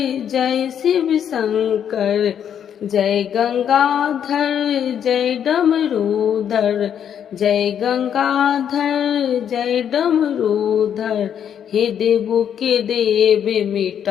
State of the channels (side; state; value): right; quieter; 8.9 dB